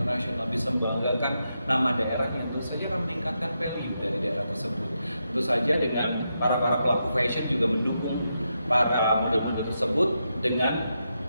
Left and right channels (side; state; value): both; inverted; correlation -0.85